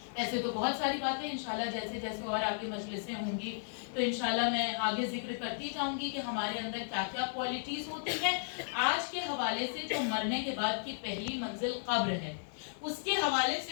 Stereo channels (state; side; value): silent; right; 55 dB below the other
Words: ایسے تو بہت ساری باتیں انشاءاللہ جیسے جیسے اور آگے مجلسیں ہوں گی تو انشاءاللہ میں آگے ذکر کرتی جاؤں گی کہ ہمارے اندر کیا کیا کوالٹیز ہوتی ہیں. آج کے حوالے سے جو مرنے کے بعد کی پہلی منزل قبر ہے, اس کے حوالے